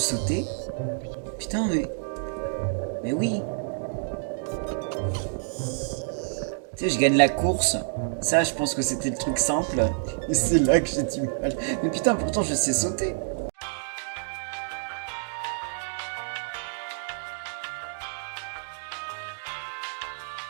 sauter. Putain, mais... mais oui. Tu sais, je gagne la course. Ça, je pense que c'était le truc simple. Et c'est là que j'ai du mal. Mais putain, pourtant, je sais sauter.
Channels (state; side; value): silent; left; digital silence